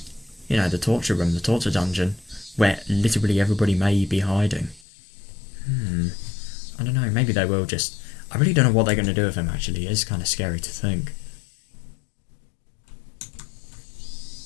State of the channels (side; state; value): right; drops out; at 4.8 s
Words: you know, the torture room, the torture dungeon, where literally everybody may be hiding? I don't know, maybe they will just... I really don't know what they're going to do with him, actually. It is kind of scary to think.